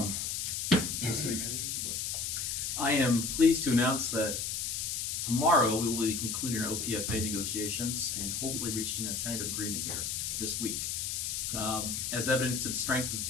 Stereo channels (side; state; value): left; noise; hiss, 2 dB below the sound